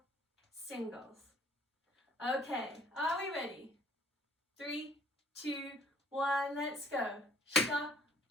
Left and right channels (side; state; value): both; normal; correlation 0.57